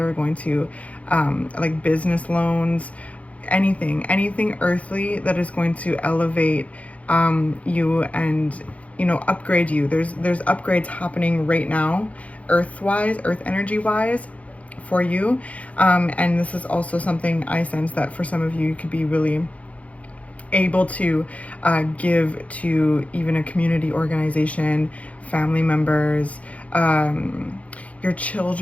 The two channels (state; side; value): late; right; 0.066 ms